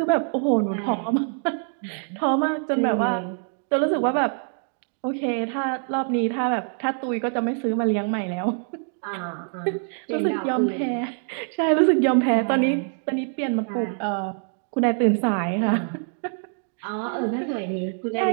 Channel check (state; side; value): silent; left; 62 dB below the other